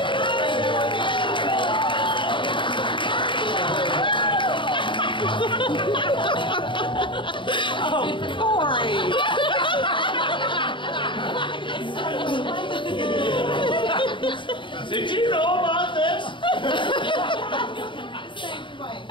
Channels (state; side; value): late; right; 0.24 ms